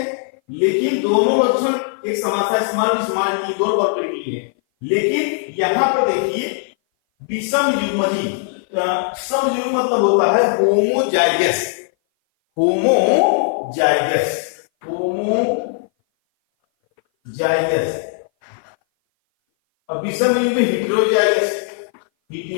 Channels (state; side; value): silent; right; 58 dB below the other